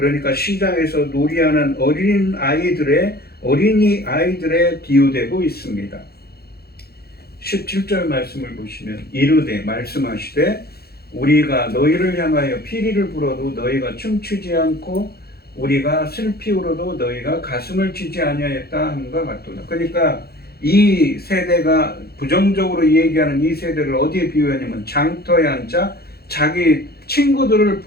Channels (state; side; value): late; right; 0.46 ms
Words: 시장에서 놀이하는 어린이 아이들에 비유되고 있습니다. 17절 말씀을 보시면 이르되 말씀하시되 우리가 너희를 향하여 피리를 불어도 너희가 춤추지 않고 우리가 슬피 울어도 너희가 가슴을 치지 아니하였다 함과 같도다. 그러니까 이 세대가 부정적으로 얘기하는 이 세대를 어디에 비유하냐면 장터에 앉아 자기 친구들을